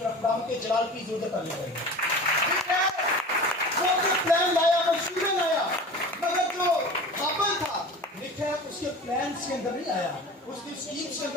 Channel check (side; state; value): both; normal; correlation 0.36